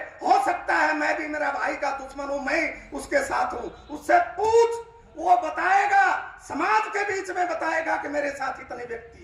हो सकता है मैं भी मेरा भाई का दुश्मन हूं, मैं उसके साथ हूं, उससे पूछ, वो बताएगा, समाज के बीच में बताएगा कि मेरे साथ इतने व्यक्ति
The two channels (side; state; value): both; identical; correlation 1.00